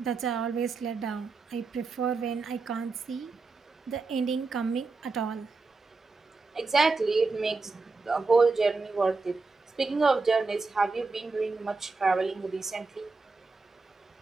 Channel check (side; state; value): left; quieter; 4.0 dB